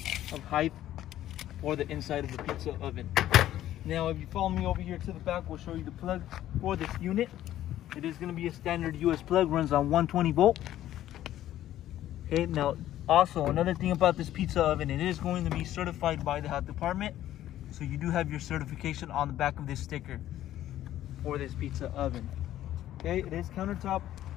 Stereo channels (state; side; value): quieter; right; 13.0 dB